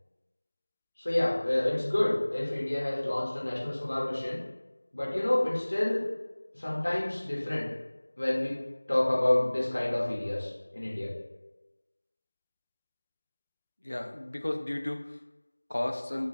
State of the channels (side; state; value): both; inverted; correlation -1.00